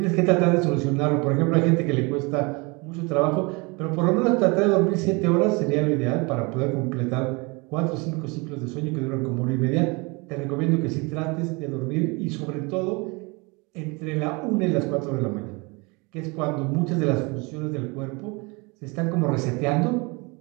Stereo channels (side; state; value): left; quieter; 28.0 dB